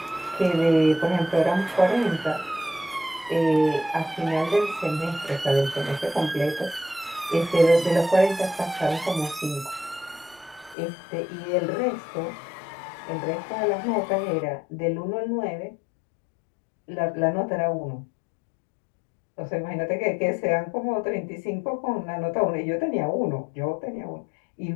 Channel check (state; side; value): drops out; right; at 10.8 s